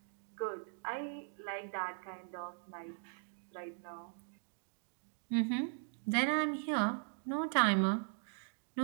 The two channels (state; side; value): silent; left; 52 dB below the other